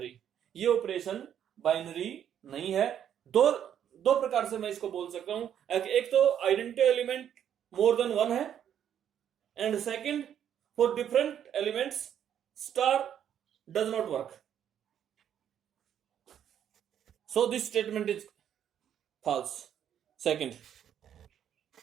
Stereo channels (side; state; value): left; quieter; 9.6 dB